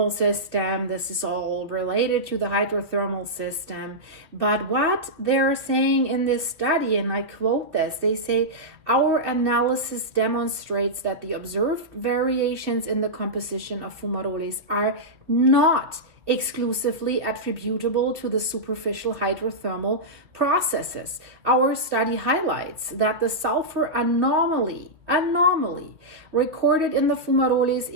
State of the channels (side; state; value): left; late; 2.4 ms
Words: system. This is all related to the hydrothermal system. But what they're saying in this study, and I quote this, they say, our analysis demonstrates that the observed variations in the composition of fumaroles are not exclusively attributable to the superficial hydrothermal processes. Our study highlights that the sulfur anomaly recorded in the fumaroles